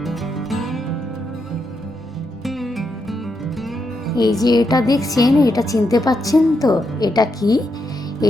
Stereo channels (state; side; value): normal; both; correlation 0.82